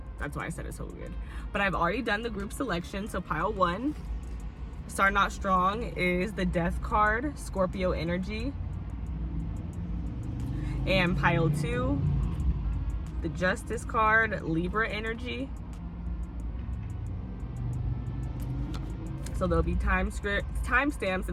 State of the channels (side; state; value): both; identical; correlation 1.00